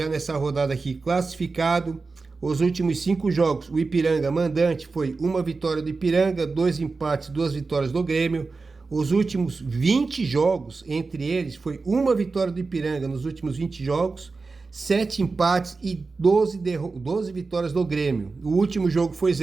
nessa rodada aqui classificado. Os últimos 5 jogos, o Ipiranga mandante foi 1 vitória do Ipiranga, 2 empates, 2 vitórias do Grêmio. Os últimos 20 jogos, entre eles, foi 1 vitória do Ipiranga nos últimos 20 jogos, 7 empates e 12 vitórias do Grêmio. O último jogo foi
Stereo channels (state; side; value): quieter; left; 4.1 dB